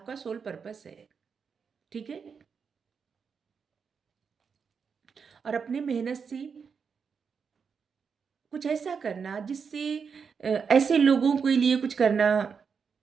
सोल पर्पस है, ठीक है। और अपने मेहनत से कुछ ऐसा करना जिससे ऐसे लोगों के लिए कुछ करना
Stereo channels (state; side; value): quieter; left; 6.0 dB